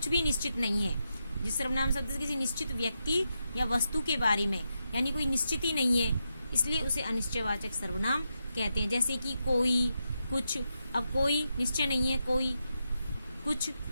भी निश्चित नहीं है। जिस सर्वनाम शब्द से किसी निश्चित व्यक्ति या वस्तु के बारे में यानी कोई निश्चित ही नहीं है, इसलिए उसे अनिश्चयवाचक सर्वनाम कहते हैं। जैसे कि कोई, कुछ। अब कोई निश्चय नहीं है, कोई,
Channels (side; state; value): both; inverted; correlation -0.86